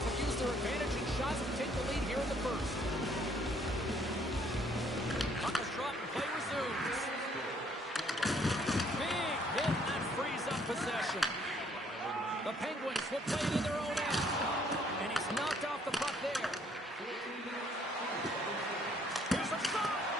have used their advantage in shots to take the lead here in the first. Puck is dropped and play resumes. Big hit that frees up possession. The Penguins will play it in their own end. And he's knocked off the puck there. Here's a shot.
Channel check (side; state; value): both; normal; correlation 0.64